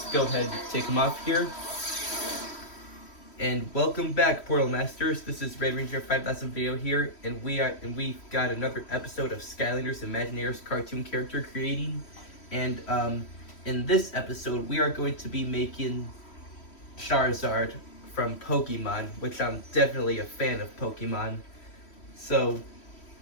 go ahead and take him off here. And welcome back, Portal Masters. This is Red Ranger 5000 video here, and we've got another episode of Skylanders Imaginators cartoon character creating. And in this episode, we are going to be making Charizard from Pokemon, which I'm definitely a fan of Pokemon. So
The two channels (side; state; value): right; late; 3.1 ms